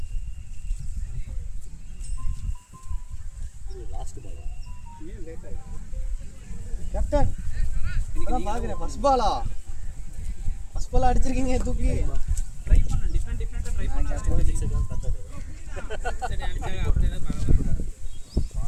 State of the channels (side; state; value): both; identical; correlation 1.00